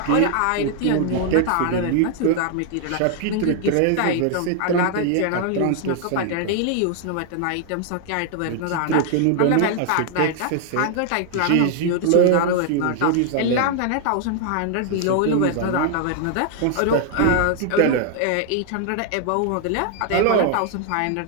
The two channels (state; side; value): different; both; correlation 0.00